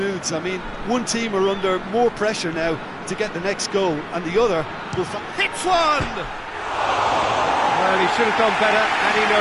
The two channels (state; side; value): identical; both; correlation 1.00